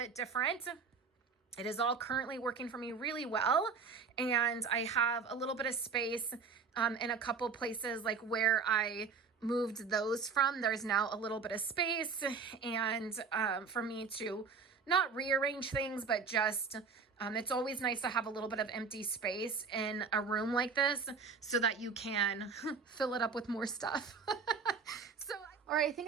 different. It is all currently working for me really well, and I have a little bit of space in a couple places, like where I moved those from. There's now a little bit of space, and for me to not rearrange things, but just it's always nice to have a little bit of empty space in a room like this so that you can fill it up with more stuff. So, all right, I think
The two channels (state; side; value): quieter; left; 5.3 dB